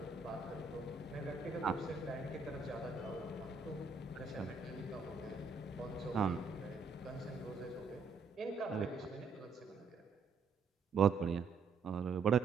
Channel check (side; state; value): left; quieter; 4.7 dB